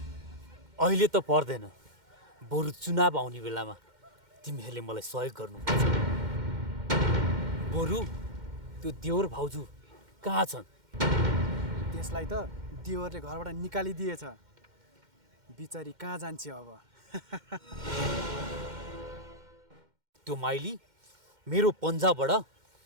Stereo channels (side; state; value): left; late; 2.1 ms